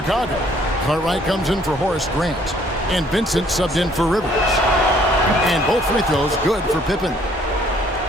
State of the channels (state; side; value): normal; both; correlation 0.61